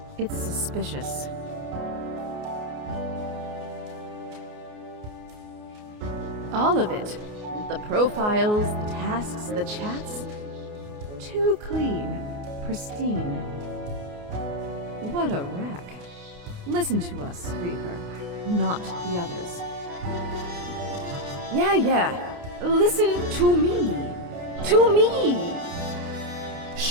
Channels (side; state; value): left; late; 29 ms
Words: It's suspicious. All of it. The profiles, the tasks, the chats. Too clean, pristine. What a wreck. Listen to us, Reaper, not the others. Yeah. Listen to me. To me!